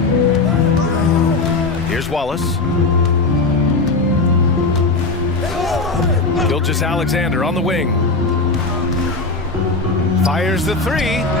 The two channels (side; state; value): right; quieter; 3.6 dB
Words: Here's Wallace. Gilgeous-Alexander on the wing. Fires the 3.